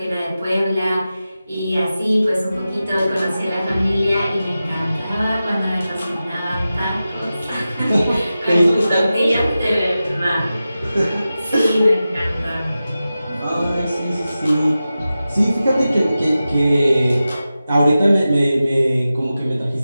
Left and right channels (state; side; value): inverted; both; correlation -0.93